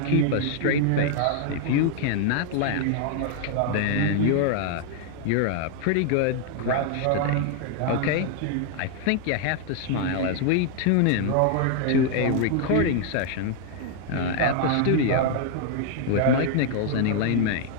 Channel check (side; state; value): both; different; correlation 0.00